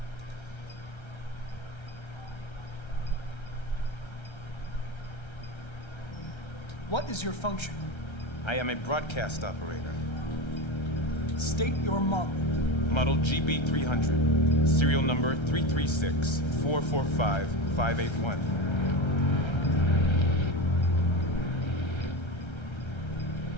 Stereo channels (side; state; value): right; late; 1.3 ms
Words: What is your function? I am a broadcast operator. State your model. Model GB300. Serial number 336-445-581.